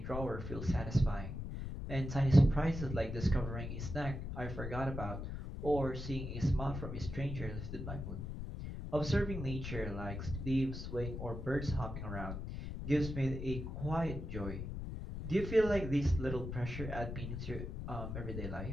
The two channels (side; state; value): left; noise; rumble, 6 dB below the sound